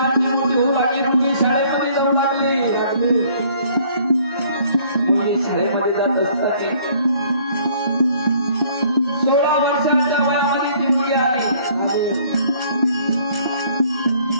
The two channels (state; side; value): inverted; both; correlation -0.59